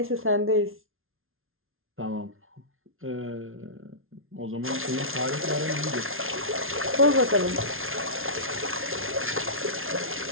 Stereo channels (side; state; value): left; late; 0.61 ms